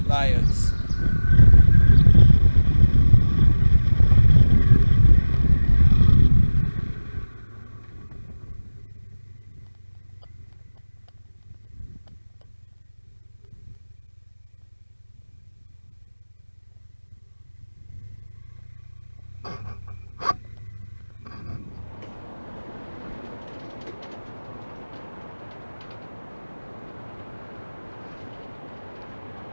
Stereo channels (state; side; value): inverted; both; correlation -1.00